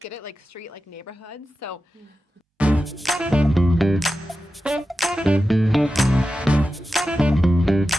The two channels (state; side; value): normal; both; correlation 0.93